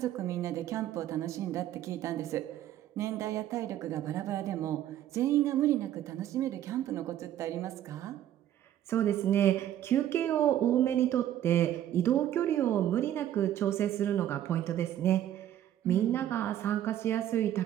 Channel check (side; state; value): left; quieter; 11.8 dB